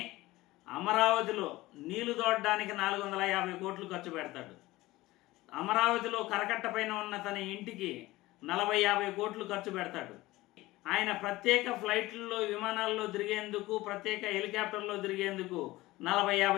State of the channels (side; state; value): right; quieter; 18.6 dB